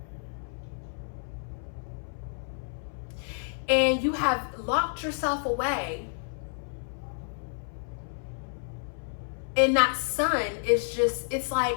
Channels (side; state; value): right; silent; 58 dB below the other